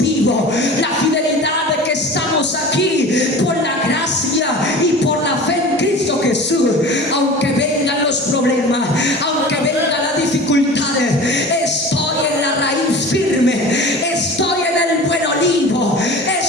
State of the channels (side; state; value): both; normal; correlation 0.37